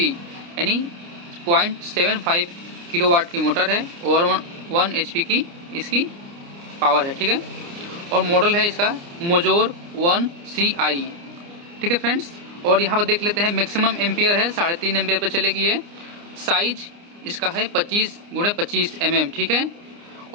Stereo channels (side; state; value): left; late; 29 ms